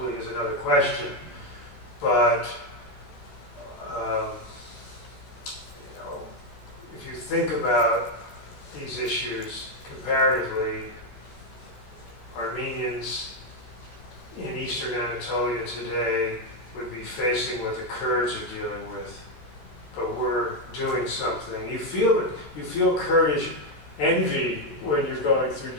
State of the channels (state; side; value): late; right; 14 ms